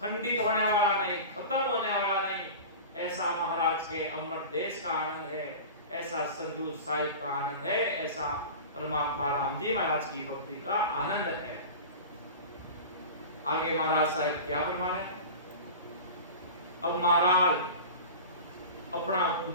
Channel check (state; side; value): inverted; both; correlation -0.33